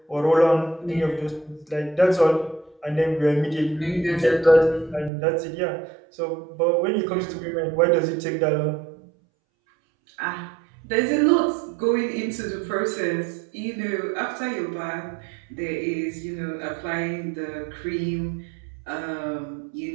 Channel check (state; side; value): drops out; left; at 5.1 s